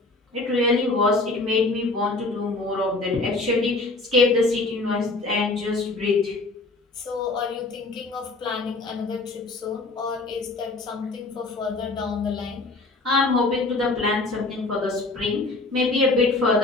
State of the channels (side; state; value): right; quieter; 3.2 dB